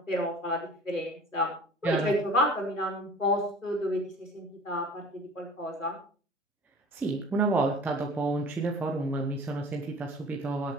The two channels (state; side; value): normal; both; correlation 0.44